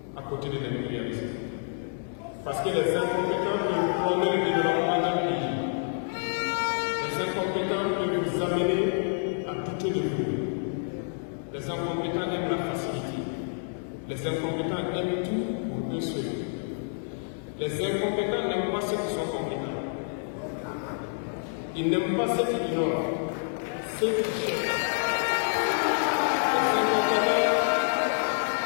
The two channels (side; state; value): right; silent; digital silence